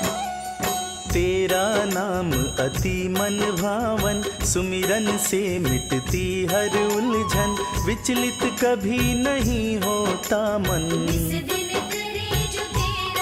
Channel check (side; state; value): both; identical; correlation 1.00